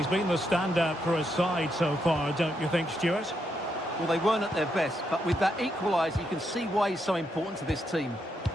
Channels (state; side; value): normal; both; correlation 0.80